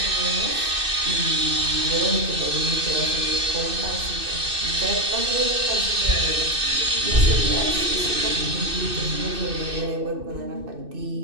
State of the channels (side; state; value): left; late; 2.6 ms